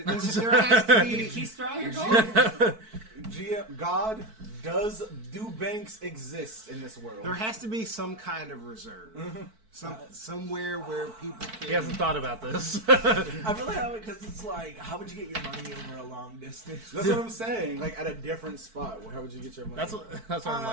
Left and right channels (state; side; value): late; left; 4.5 ms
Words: there has to You be. keep straw your gold. God, do banks exist in this world? There has to be some kind of reserve. Somewhere where people can. He hasn't thought about this. I really have it because it's like, how would you get your money over a long distance? That's what I'm saying. Like at a different spot. How would you get your money? That's what I'm